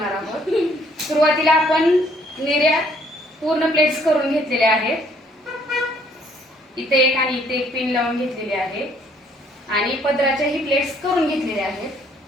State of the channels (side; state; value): both; normal; correlation 0.64